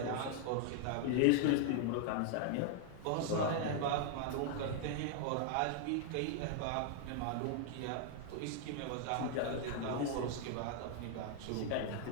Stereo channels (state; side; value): different; both; correlation 0.00